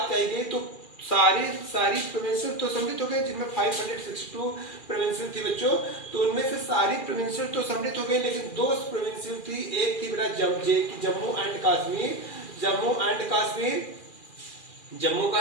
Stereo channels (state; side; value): late; right; 2.4 ms